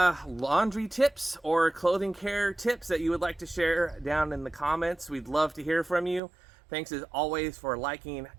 laundry tips or clothing care tips that you would like to share down in the comments, we'd love to hear from you. Thanks as always for liking,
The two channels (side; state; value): left; drops out; at 6.2 s